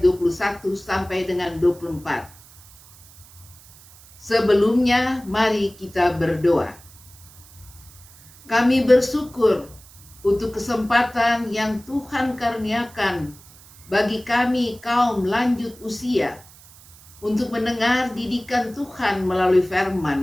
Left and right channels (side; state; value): right; noise; hiss, 23 dB below the sound